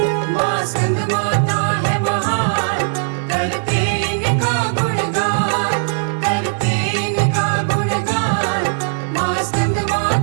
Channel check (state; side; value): silent; left; digital silence